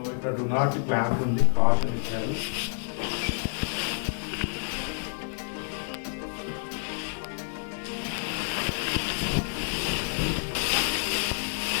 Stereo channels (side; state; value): right; silent; digital silence